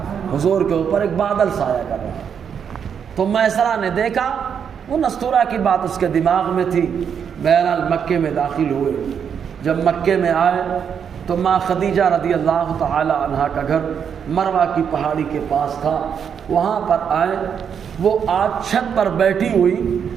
حضور کے اوپر ایک بادل سایہ کر رہا تھا۔ تو میسرہ نے دیکھا، وہ نستورہ کی بات اس کے دماغ میں تھی۔ بہرحال مکے میں داخل ہوئے۔ جب مکے میں آئے تو ماں خدیجہ رضی اللہ تعالی عنہا کا گھر مروہ کی پہاڑی کے پاس تھا، وہاں پر آئے۔ وہ آج چھت پر بیٹھی ہوئی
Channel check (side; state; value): left; quieter; 7.5 dB